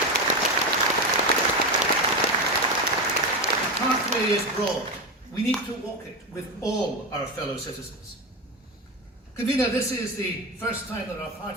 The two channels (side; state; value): both; normal; correlation 0.17